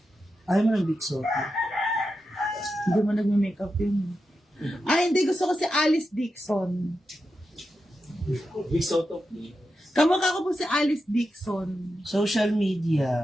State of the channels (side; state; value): both; normal; correlation 0.89